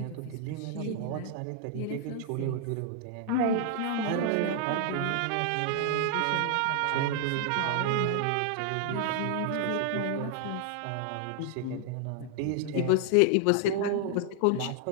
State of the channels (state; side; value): different; both; correlation 0.00